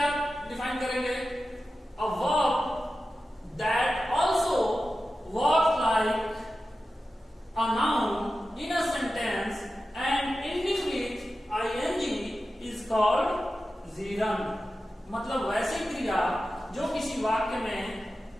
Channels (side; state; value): both; normal; correlation 0.93